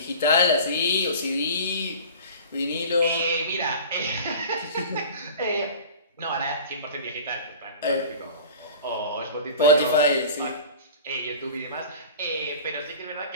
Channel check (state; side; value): inverted; both; correlation -0.39